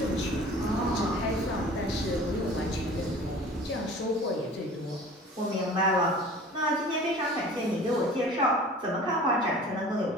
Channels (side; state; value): both; normal; correlation 0.43